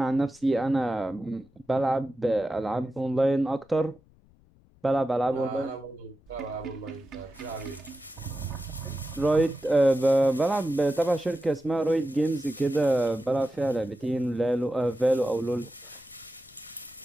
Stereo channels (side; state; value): left; noise; rumble, 29 dB below the sound